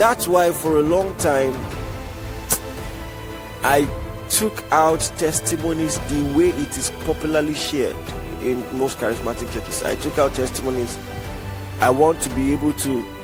why for a long time I took out testimonies the way it is popularly shared in most charismatic churches. I took out testimonies. I want to be able to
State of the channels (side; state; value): both; identical; correlation 1.00